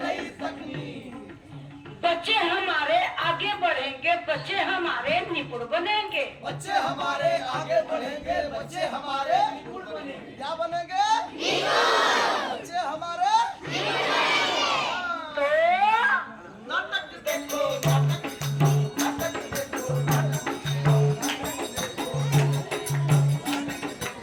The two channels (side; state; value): both; identical; correlation 1.00